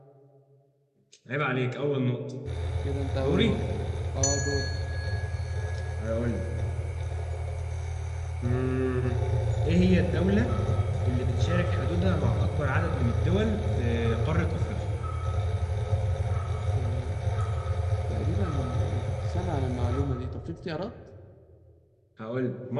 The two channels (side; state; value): both; identical; correlation 1.00